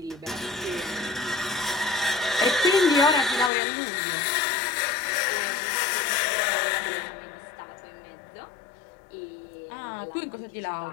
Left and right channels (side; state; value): right; drops out; at 3.5 s